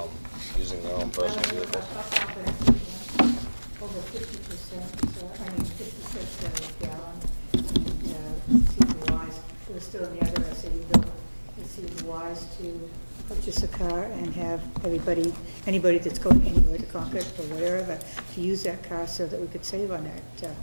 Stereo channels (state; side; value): inverted; both; correlation -1.00